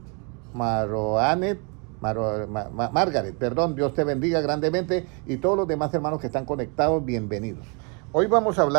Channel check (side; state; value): left; quieter; 34.7 dB